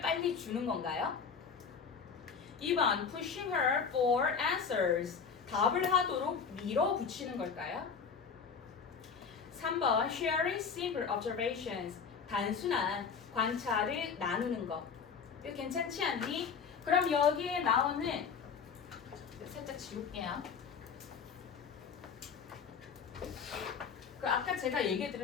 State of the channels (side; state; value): right; quieter; 6.1 dB